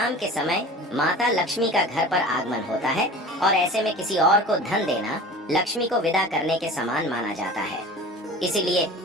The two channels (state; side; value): normal; both; correlation 0.38